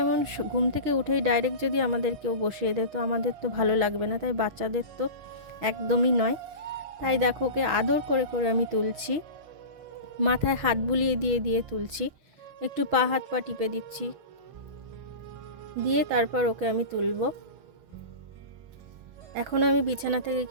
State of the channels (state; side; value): late; left; 6.2 ms